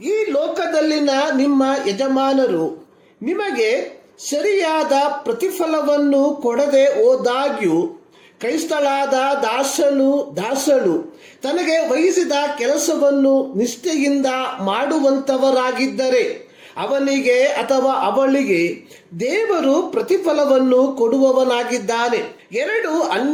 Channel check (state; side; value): identical; both; correlation 1.00